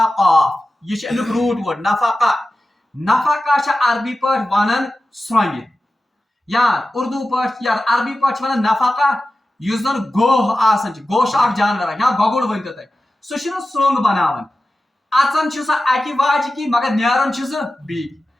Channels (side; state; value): both; normal; correlation 0.94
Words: قاف یہ امیک روٹ ورڈ نفقہ نفقہ عربی پہ ونان سرنگ یا اردو پہ یا عربی پہ ونان نفقہ اس زن گوہ آسان گوہ اخ جانور یا گگڑ ورنت تک سہ سرنگ بناون اچان سہ اکہ واجہ کی مگر نیران سہ بی